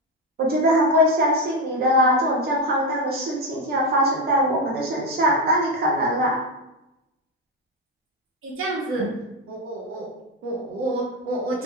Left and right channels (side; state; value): both; normal; correlation 0.10